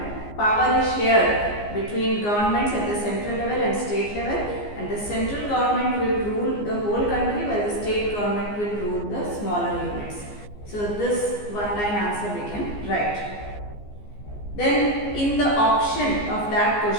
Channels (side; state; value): right; late; 14 ms